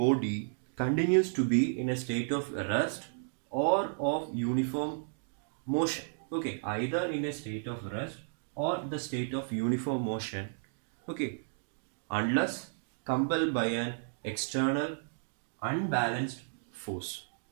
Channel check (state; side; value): silent; left; digital silence